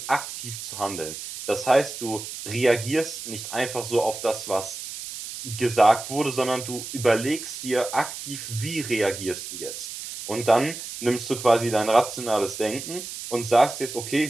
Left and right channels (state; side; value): noise; right; hiss, 9 dB below the sound